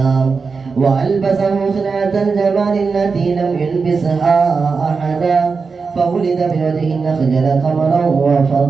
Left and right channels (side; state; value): left; quieter; 4.8 dB